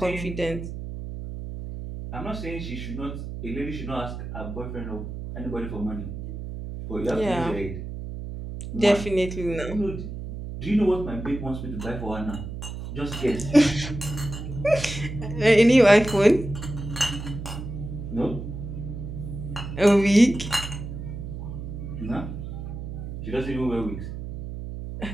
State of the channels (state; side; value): noise; right; hum, 8 dB below the sound